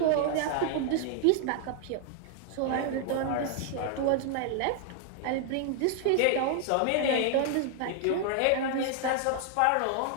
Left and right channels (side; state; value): both; different; correlation 0.00